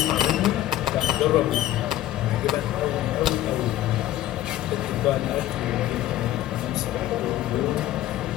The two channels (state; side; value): quieter; right; 14.0 dB